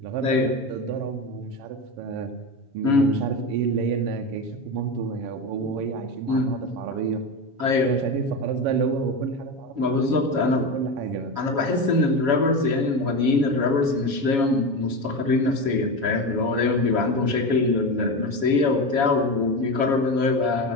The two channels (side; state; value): left; late; 7.2 ms